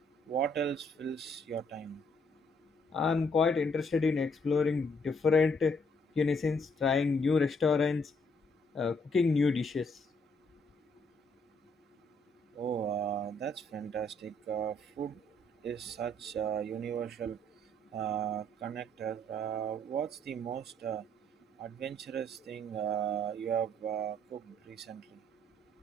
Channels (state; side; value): normal; both; correlation 0.68